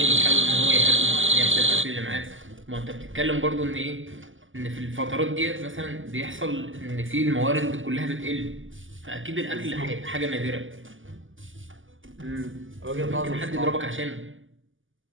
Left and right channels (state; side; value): late; left; 0.58 ms